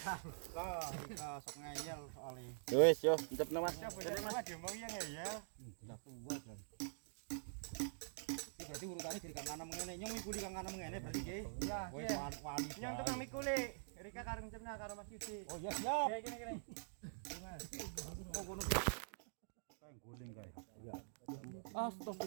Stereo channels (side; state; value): left; silent; digital silence